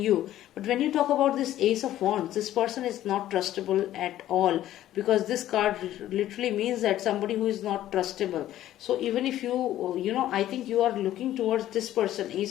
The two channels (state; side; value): quieter; right; 13.2 dB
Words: you. But when you talk about this Ace of Wands, this person is not trustable at all, because this card literally means that somebody who is not trustable. So even if I think you are looking towards this person,